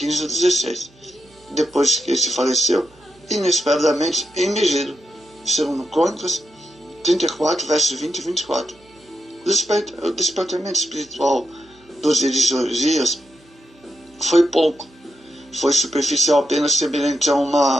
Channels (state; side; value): noise; right; hum, 29 dB below the sound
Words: a 16. Depois que ele faleceu, inesperadamente em Megiddo, segundo Crônicas 34, versos 20 e 24. O despertamento espiritual dos dias de Josias foi pouco. Foi superficial, apenas semelhante a